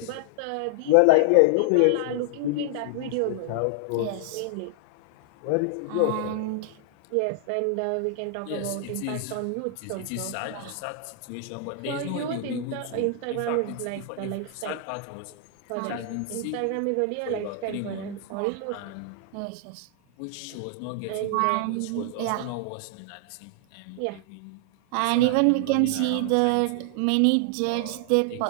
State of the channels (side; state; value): both; different; correlation 0.00